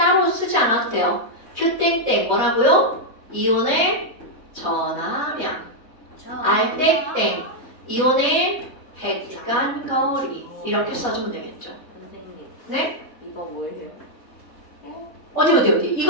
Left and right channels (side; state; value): right; late; 4.1 ms